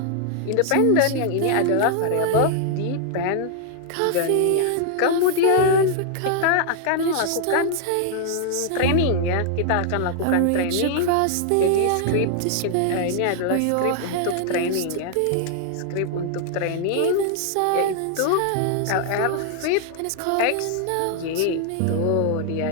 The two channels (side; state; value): both; different; correlation 0.00